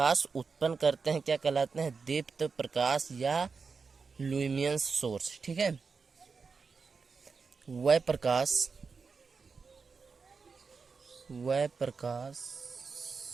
उत्पन्न करते हैं, क्या कहलाते हैं, दीप्त प्रकाश या लुमियन सोर्स। ठीक है, वह प्रकाश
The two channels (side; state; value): left; quieter; 5.0 dB